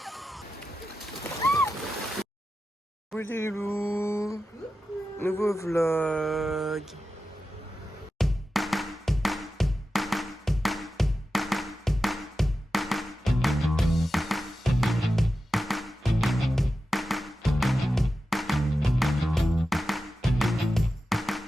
Coucou les loups. Nouveau vlog.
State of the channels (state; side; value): normal; both; correlation 0.92